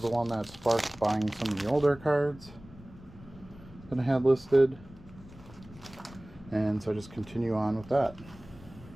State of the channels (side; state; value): left; noise; rumble, 20 dB below the sound